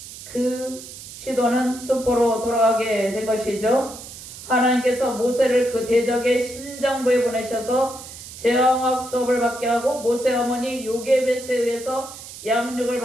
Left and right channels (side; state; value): right; noise; hiss, 14 dB below the sound